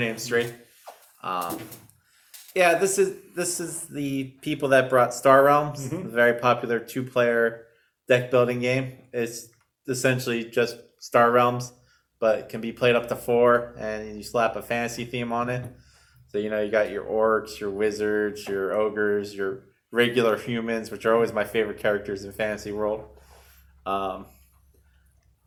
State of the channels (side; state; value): both; identical; correlation 1.00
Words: straight. This is the people that brought Star Realms, mm-hmm. a very popular 2-player deck building game. It's essentially just Star Realms, but it can be played up to 4, and you slap a fantasy theme on it. So, you got your orcs, your wizards, your ogres, your regular humans, which are always my favorite characters in Fantasy World.